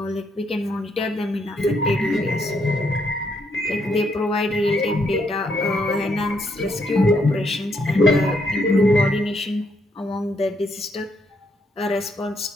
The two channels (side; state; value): both; normal; correlation 0.74